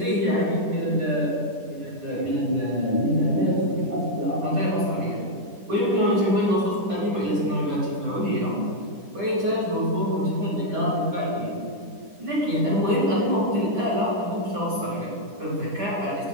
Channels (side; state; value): left; late; 10 ms